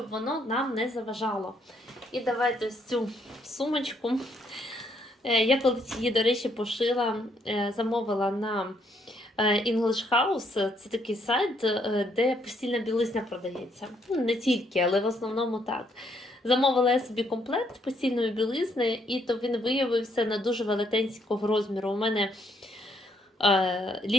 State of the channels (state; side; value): normal; both; correlation 0.71